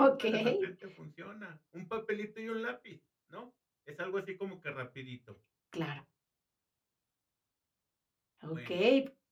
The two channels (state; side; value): identical; both; correlation 1.00